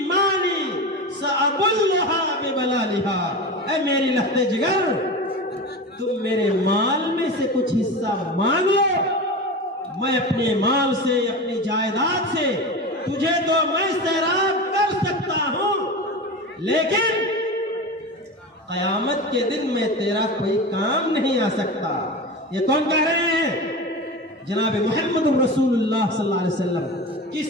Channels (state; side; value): normal; both; correlation 0.27